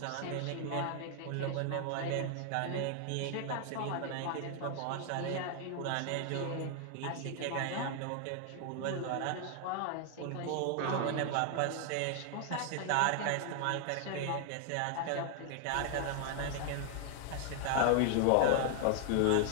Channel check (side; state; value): both; different; correlation 0.00